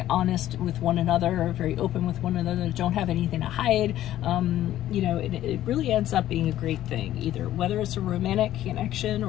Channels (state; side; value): quieter; right; 13.1 dB